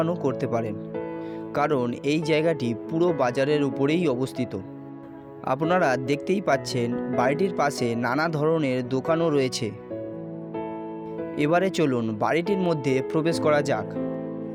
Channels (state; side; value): identical; both; correlation 1.00